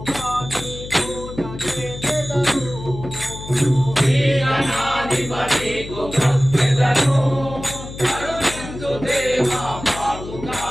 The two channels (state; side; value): noise; left; hum, 12 dB below the sound